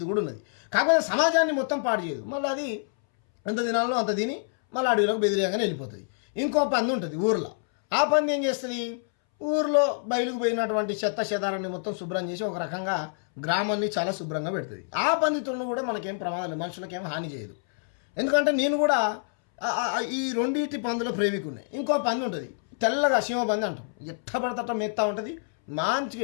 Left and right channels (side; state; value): right; silent; 60 dB below the other